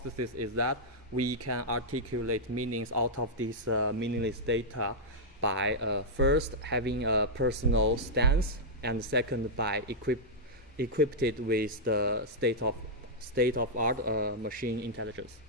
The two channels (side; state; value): both; normal; correlation -0.06